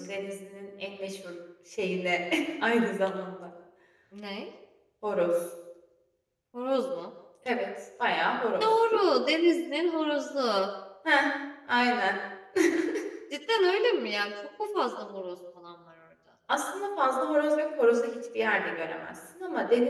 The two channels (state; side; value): identical; both; correlation 1.00